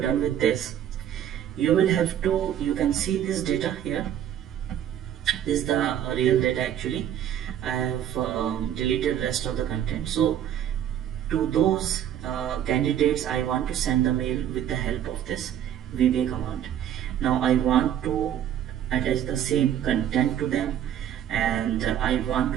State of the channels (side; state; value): left; quieter; 10.3 dB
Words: with this, you will have to, you can see this data here. This is the real data actually. I have deleted rest of the content. So to those candidates, I want to send the mail with the help of this VBA command. Now I want to attach the same content to them, and I want